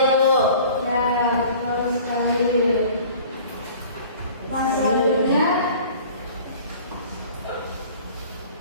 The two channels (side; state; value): both; inverted; correlation -0.46